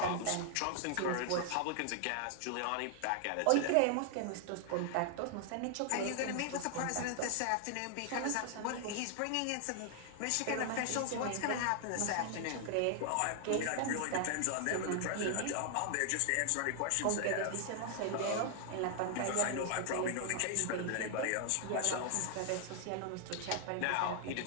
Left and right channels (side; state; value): both; different; correlation 0.00